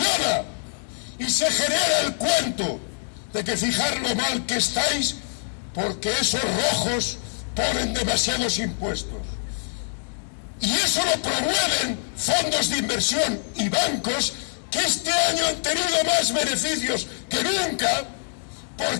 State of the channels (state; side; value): silent; right; digital silence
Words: y se genera el cuento de que fijar lo mal que estáis, porque esos rojos ponen demasiados impuestos. Y eso lo promueven fondos de inversión y bancos que este año han tenido más beneficios que nunca,